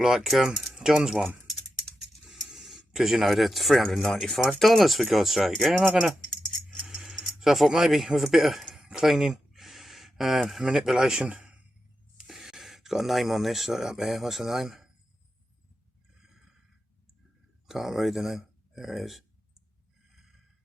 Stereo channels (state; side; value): normal; both; correlation 0.89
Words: John's one, because you know they're $395 for God's sake. Yeah, am I gonna? So I thought maybe with a bit of cleaning, manipulation. It's got a name on this up there. What's the name? Can't read the name. There it is.